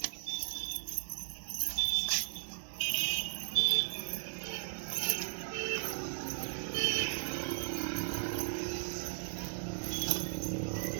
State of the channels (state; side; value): silent; left; digital silence